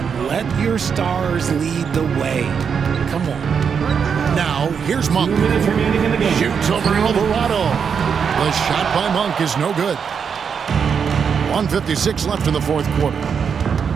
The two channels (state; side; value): quieter; left; 6.7 dB